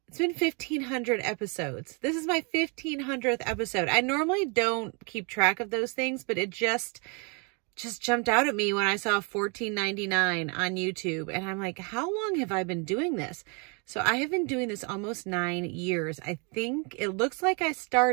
it's been 1,500 episodes. This is my 1,500th episode. I normally don't keep track of those things, but it just jumped out at me when I saw $14.99 on YouTube. And I'm like, how long have I been doing this? So I have been doing this almost 9 years. I think it looks like I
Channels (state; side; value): quieter; left; 34.0 dB